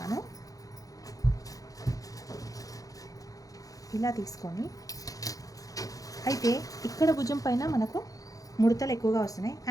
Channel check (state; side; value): late; right; 0.17 ms